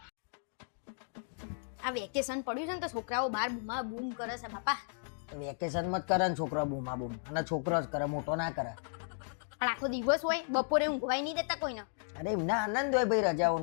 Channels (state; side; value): silent; right; digital silence